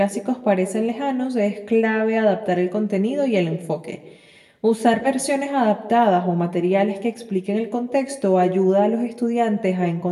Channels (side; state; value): both; identical; correlation 1.00